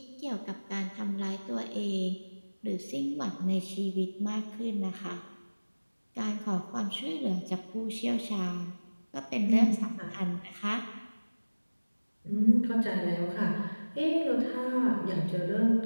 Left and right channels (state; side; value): inverted; both; correlation -1.00